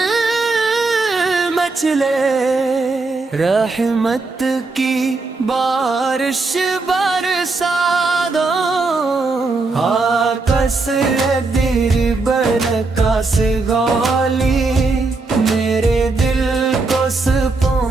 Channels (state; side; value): quieter; left; 3.7 dB